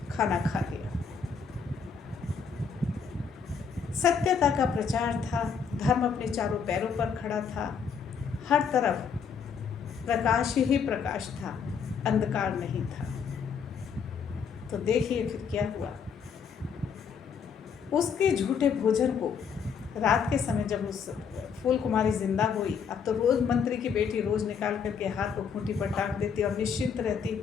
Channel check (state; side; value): quieter; right; 6.5 dB